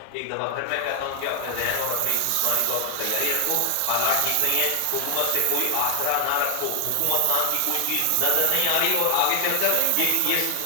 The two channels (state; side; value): different; both; correlation 0.00